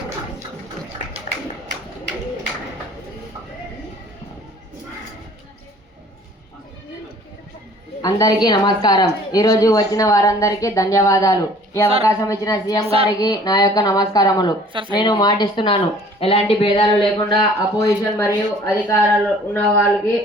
అందరికీ నమస్కారం. ఈరోజు వచ్చిన వారందరికీ ధన్యవాదాలు. ఈ అవకాశం ఇచ్చిన సీఎం గారికి నా యొక్క నమస్కారములు. నేను మాటిస్తున్నాను, ఎలాంటి భేదాలు లేకుండా అపోజిషన్ మరియు అధికారాలు ఉన్న వాళ్ళకి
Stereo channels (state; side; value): normal; both; correlation 0.52